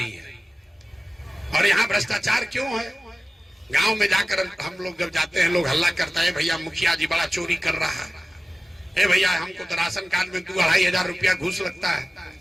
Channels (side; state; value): both; normal; correlation 0.96